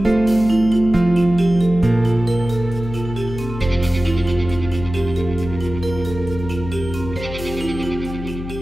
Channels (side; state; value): left; noise; hum, 9 dB below the sound